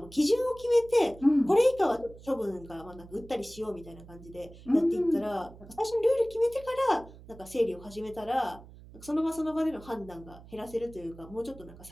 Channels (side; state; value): right; noise; hum, 19 dB below the sound